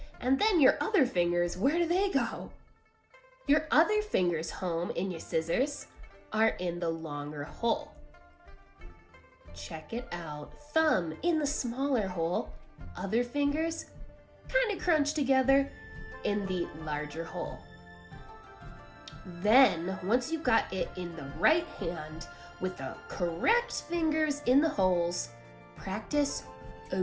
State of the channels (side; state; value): both; identical; correlation 1.00